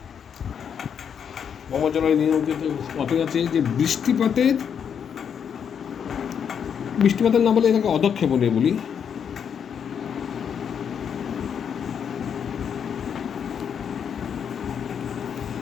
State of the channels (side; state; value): right; quieter; 7.7 dB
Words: ভৌমজলের নিয়ন্ত্রিত পথে আছে যে বৃষ্টিপাতের না বলে এটাকে অধক্ষেপণে বলি।